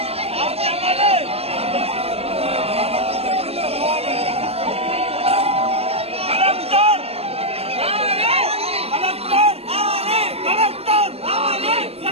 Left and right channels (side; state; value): left; late; 0.29 ms